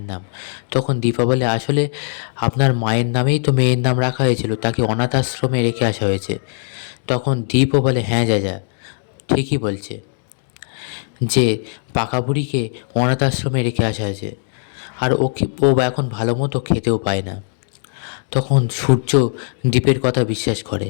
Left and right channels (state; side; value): silent; right; digital silence